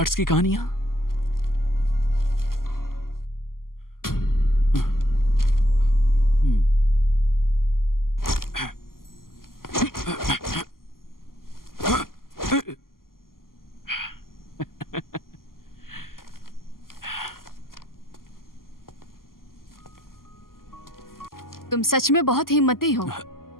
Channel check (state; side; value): late; right; 0.92 ms